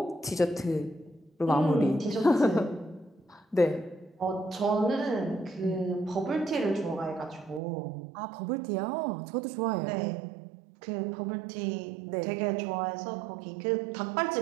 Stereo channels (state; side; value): drops out; left; at 7.6 s